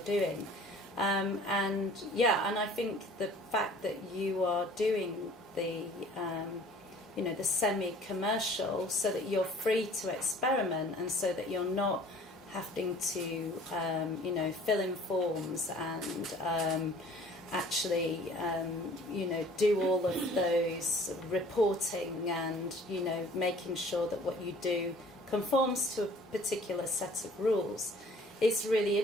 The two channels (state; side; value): normal; both; correlation 0.51